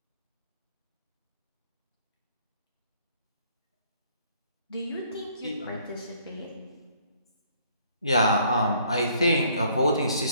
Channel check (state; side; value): inverted; both; correlation -0.63